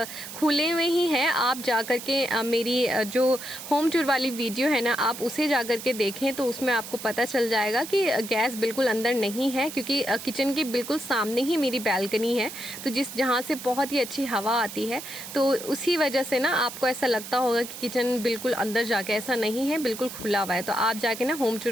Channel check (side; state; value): right; noise; hiss, 11 dB below the sound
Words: खुले में ही है। आप जा कर के मेरी जो होम टूर वाली वीडियो है ना, आप उसे जा कर के देखें, तो उसमें आपको पता चल जाएगा कि गैस बिल्कुल अंदर नहीं है, क्योंकि किचन के बिल्कुल सामने ही मेरी बैल्कनी है, तो जहाँ से बहुत ही अच्छी हवा आती है। तो उसी वजह से ना आपको ऐसा लगता होगा कि किचन बिल्कुल अंदर जाके, ऐसा नहीं है, बिल्कुल खुला हुआ है। तो आप जाके ना होम